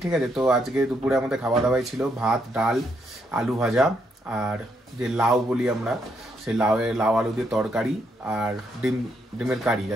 ঠিক আছে, তো আজকে দুপুরে আমাদের খাওয়া দাওয়াই ছিল ভাত, ডাল, আলু ভাজা, আর যে লাউ বলি আমরা, সেই লাউ আলু দিয়ে তরকারি, আর ডিমের কারি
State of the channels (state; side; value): normal; both; correlation 0.76